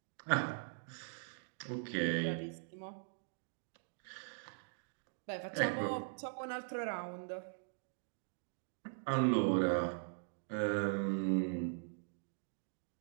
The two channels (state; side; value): silent; left; digital silence